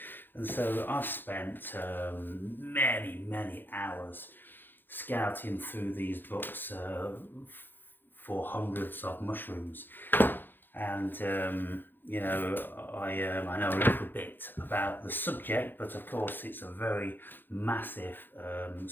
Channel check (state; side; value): late; right; 0.095 ms